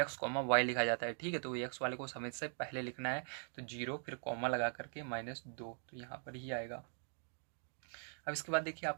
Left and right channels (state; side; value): silent; left; 50 dB below the other